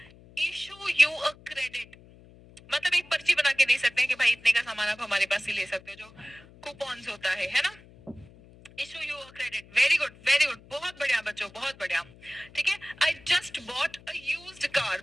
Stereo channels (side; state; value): left; noise; hum, 23 dB below the sound